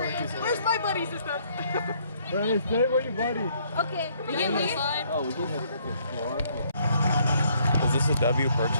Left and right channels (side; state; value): both; inverted; correlation -0.66